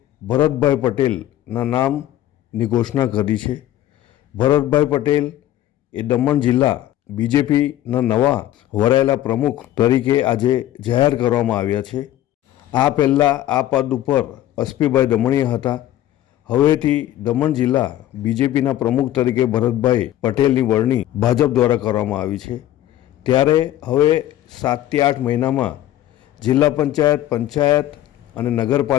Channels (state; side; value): quieter; right; 13.3 dB